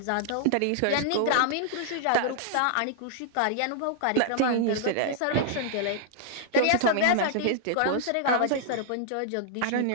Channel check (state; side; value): different; both; correlation -0.01